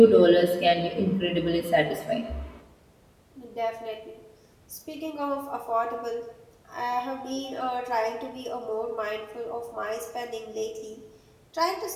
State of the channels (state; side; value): identical; both; correlation 1.00